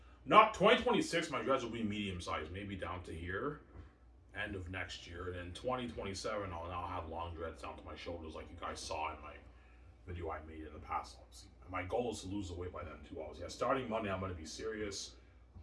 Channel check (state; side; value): identical; both; correlation 1.00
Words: Not 2026, my dreads will be medium sized, maybe down to here. End of next year. And in 2027, I'll now have long dreads down to my shoulders, like you guys saw in my video I made in the past, obviously. And my goal is to lose the weight by then, too, obviously. Yeah, starting Monday, I'm going to be serious.